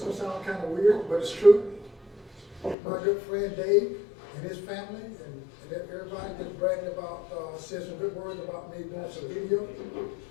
is gonna sound kind of weird, but it's true. My good friend Dave and his family and everybody just bragging about, said some good words about me doing some video.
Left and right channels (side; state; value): right; drops out; at 2.8 s